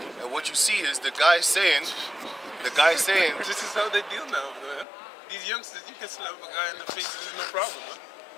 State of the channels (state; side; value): drops out; right; at 4.9 s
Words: what you see is the guy saying, This is how they deal now, man. These youngsters, you can slap a guy in the face, there's no problem, man.